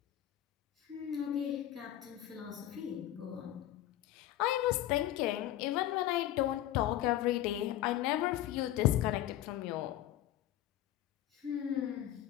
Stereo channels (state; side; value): quieter; right; 13.2 dB